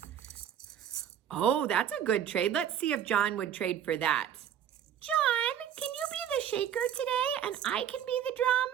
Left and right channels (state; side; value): quieter; left; 9.5 dB